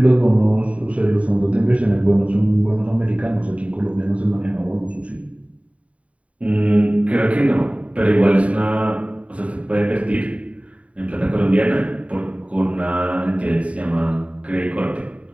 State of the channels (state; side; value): late; left; 0.066 ms